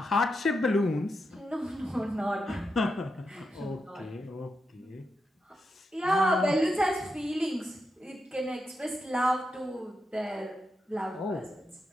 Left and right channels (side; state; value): both; normal; correlation 0.86